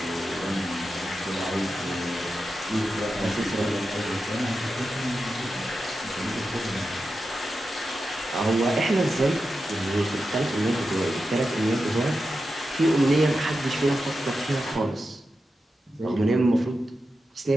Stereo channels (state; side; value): normal; both; correlation 0.90